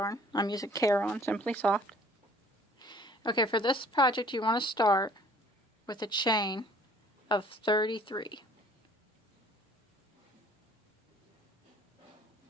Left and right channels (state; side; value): normal; both; correlation 0.54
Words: I'm using Caron Simply Soft. Okay, for this project you want to start with a chain of 33.